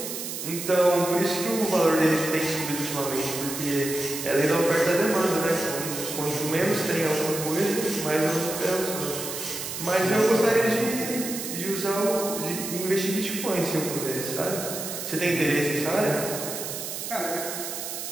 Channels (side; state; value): right; noise; hiss, 6 dB below the sound